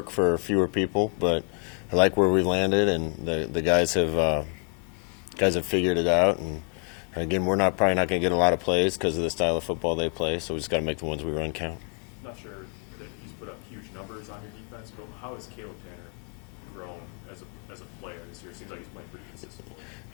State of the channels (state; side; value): quieter; right; 37.2 dB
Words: for fewer people, but I like where we landed, and the guys have figured it out. And again, we're probably not going to get a lot of plays because of the style of football they play, so we just got to make the ones we run count. Not sure that he's put up huge numbers on your defense, but how has Caleb Tanner grown as a player this year? It seems like he's playing pretty consistently.